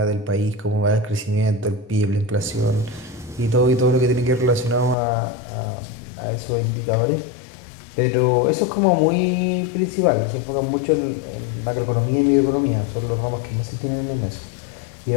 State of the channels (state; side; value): drops out; right; at 5.0 s